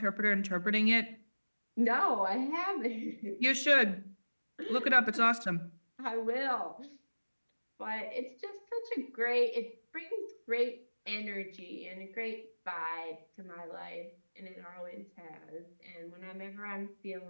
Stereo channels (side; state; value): both; inverted; correlation -1.00